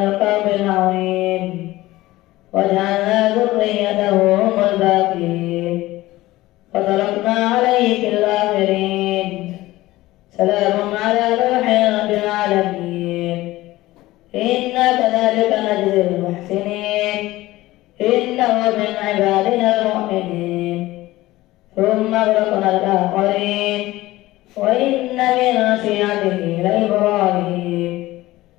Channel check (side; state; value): right; quieter; 17.6 dB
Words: العظيم وجعلنا ذريته هم الباقين وتركنا عليه في الآخرين سلام على نوح رب العالمين إنا كذلك نجزي المحسنين إنه من عبادنا المؤمنين ثم أغرقنا الآخرين وإن من شيعته لإبراهيم